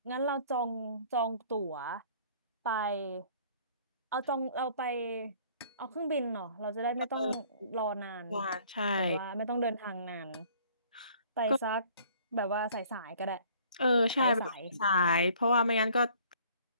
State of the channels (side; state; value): both; inverted; correlation -0.55